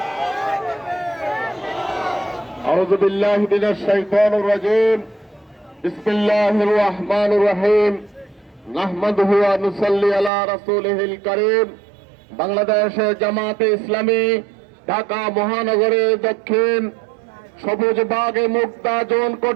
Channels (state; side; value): drops out; left; at 10.3 s